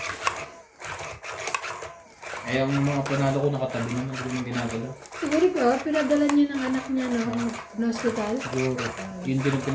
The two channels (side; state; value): both; identical; correlation 1.00